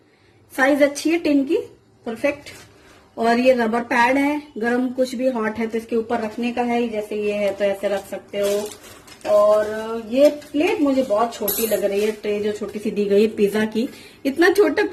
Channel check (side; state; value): both; identical; correlation 1.00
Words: साइज अच्छी है टिन की, परफेक्ट। और ये रबर पैड है, गरम कुछ भी हॉट है तो इसके ऊपर रखने का है। जैसे ये है तो ऐसे रख सकते हो। और ये प्लेट मुझे बहुत छोटी लग रही है, ट्रे जो छोटी सी दी गई है पिज्जा की। इतना छोटा